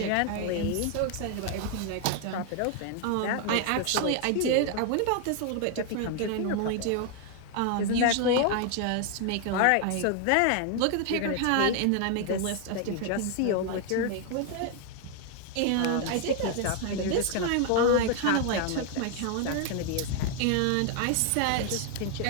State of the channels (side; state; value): both; different; correlation 0.00